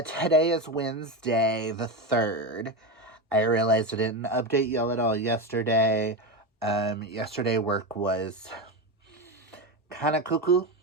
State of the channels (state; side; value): normal; both; correlation 0.16